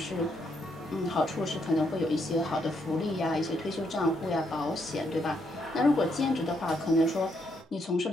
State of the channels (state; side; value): normal; both; correlation 0.76